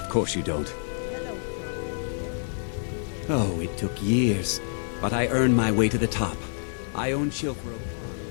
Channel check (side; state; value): right; silent; 60 dB below the other